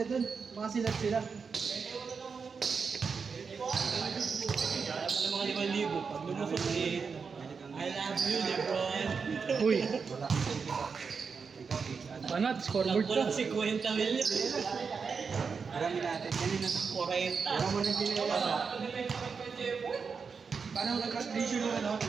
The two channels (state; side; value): quieter; left; 5.5 dB